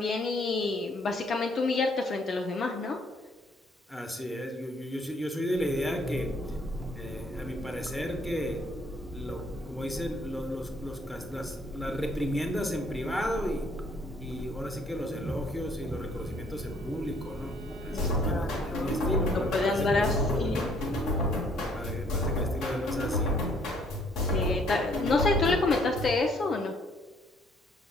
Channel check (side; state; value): both; normal; correlation 0.64